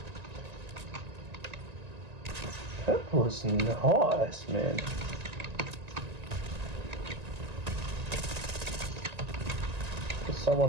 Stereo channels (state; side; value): late; left; 1.9 ms